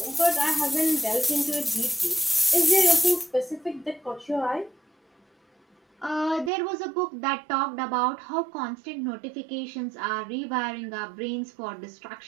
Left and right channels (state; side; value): drops out; left; at 6.5 s